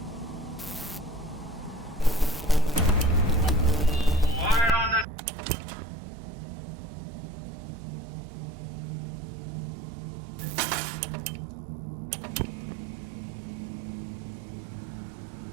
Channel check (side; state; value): left; drops out; at 5.1 s